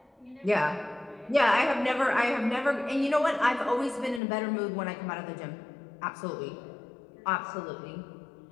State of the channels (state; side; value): drops out; right; at 4.2 s